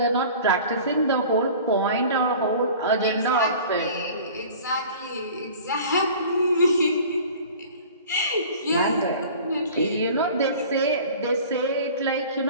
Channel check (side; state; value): both; inverted; correlation -0.43